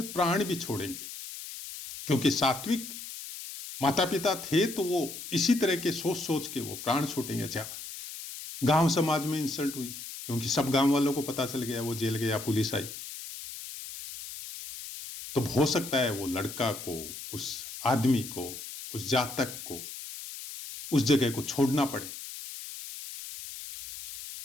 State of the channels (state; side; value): noise; left; hiss, 10 dB below the sound